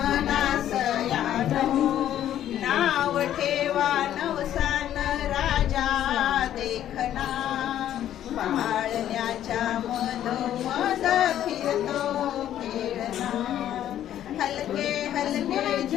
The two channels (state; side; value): quieter; right; 11.4 dB